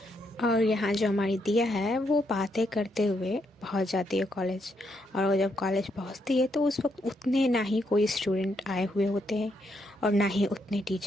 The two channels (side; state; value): both; normal; correlation 0.77